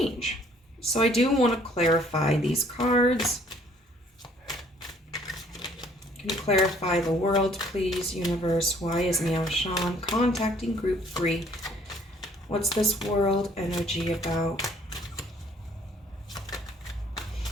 So I do want to clarify these cards. Can you clarify the World, please, universe? Why is Meow Shan contacting group 3? What's this World energy about?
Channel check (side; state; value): both; normal; correlation 0.59